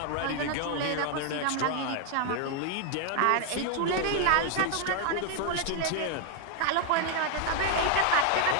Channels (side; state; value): both; different; correlation 0.00